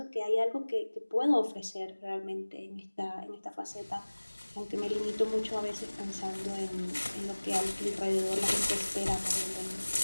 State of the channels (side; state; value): both; inverted; correlation -1.00